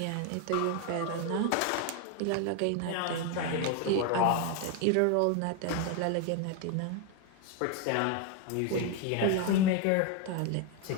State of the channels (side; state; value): both; different; correlation 0.01